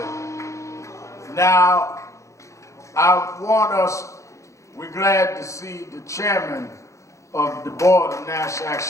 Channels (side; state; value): right; late; 0.15 ms